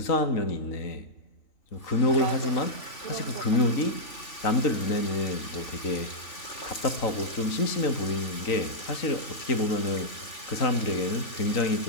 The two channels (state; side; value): late; right; 3.4 ms